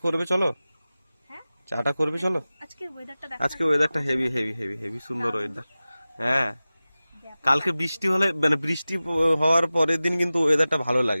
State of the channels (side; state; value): both; inverted; correlation -0.96